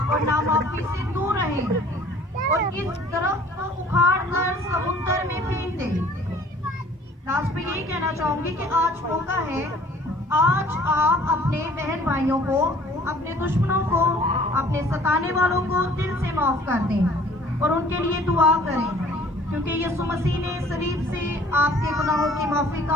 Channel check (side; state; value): both; normal; correlation 0.53